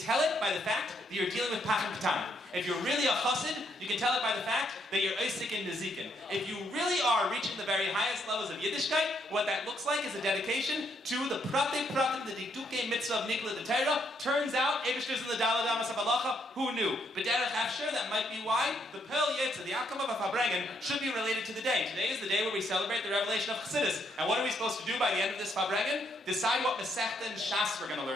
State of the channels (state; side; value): normal; both; correlation 0.73